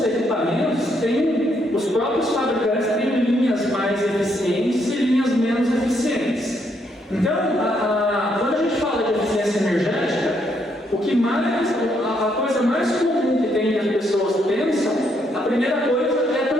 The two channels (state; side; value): normal; both; correlation 0.74